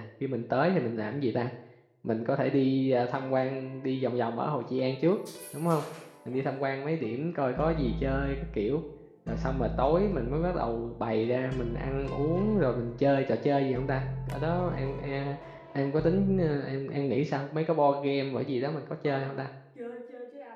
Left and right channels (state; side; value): identical; both; correlation 1.00